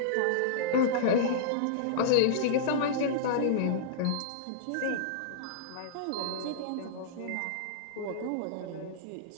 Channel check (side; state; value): both; different; correlation -0.02